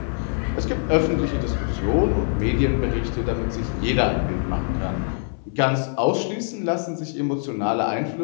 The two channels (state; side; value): silent; right; 59 dB below the other